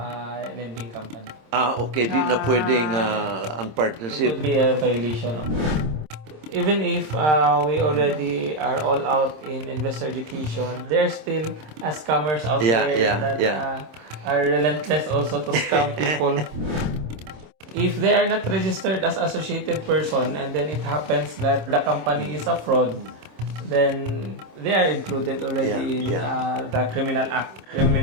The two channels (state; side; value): late; left; 26 ms